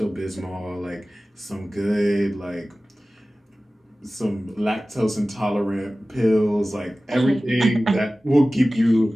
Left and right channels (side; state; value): both; normal; correlation 0.97